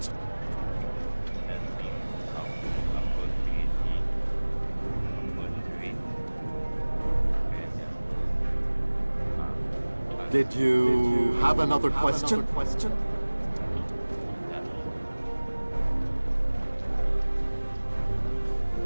Did you have another question?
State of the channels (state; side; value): inverted; both; correlation -1.00